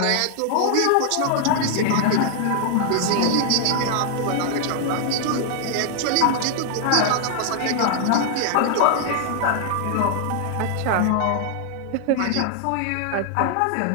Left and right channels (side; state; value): both; different; correlation 0.00